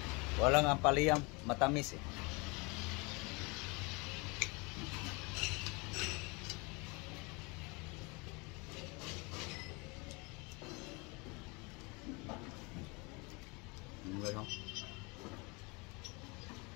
Walang ampaliyam, matamis eh. Ano?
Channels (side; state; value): right; quieter; 28.3 dB